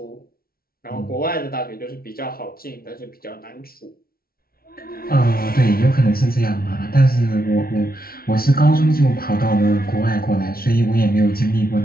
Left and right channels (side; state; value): right; late; 0.44 ms